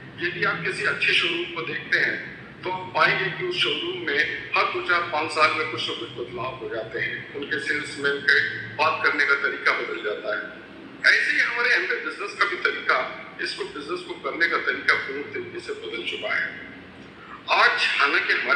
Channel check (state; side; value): identical; both; correlation 1.00